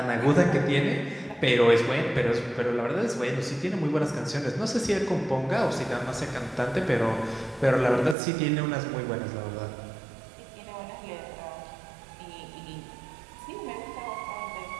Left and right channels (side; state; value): left; drops out; at 8.2 s